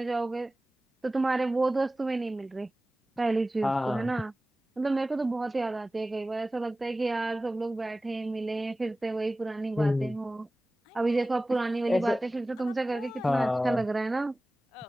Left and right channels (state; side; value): normal; both; correlation 0.97